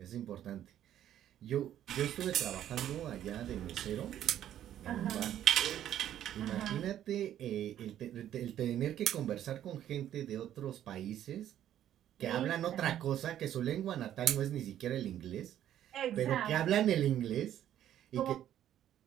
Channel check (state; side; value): quieter; left; 11.3 dB